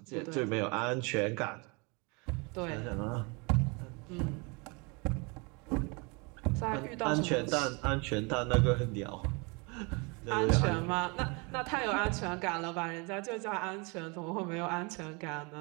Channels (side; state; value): left; quieter; 30.0 dB